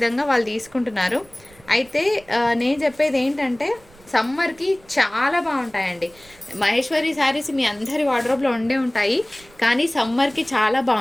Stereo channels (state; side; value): noise; right; rumble, 27 dB below the sound